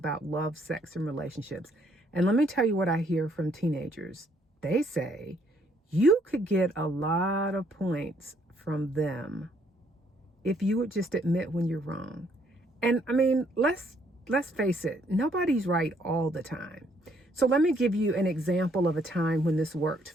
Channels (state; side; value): normal; both; correlation 0.67